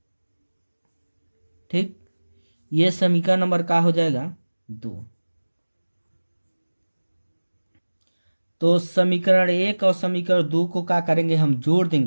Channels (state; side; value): inverted; both; correlation -1.00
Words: ठीक, ये समीकरण नंबर का हो जाएगा 2। तो समीकरण 1 और समीकरण 2 को क्या करेंगे, हम जोड़